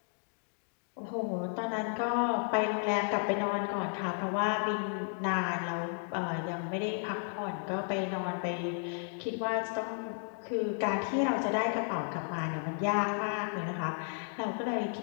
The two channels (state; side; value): silent; right; 55 dB below the other